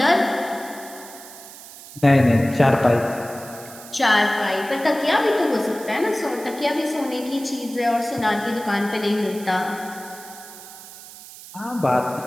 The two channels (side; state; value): right; noise; hiss, 16 dB below the sound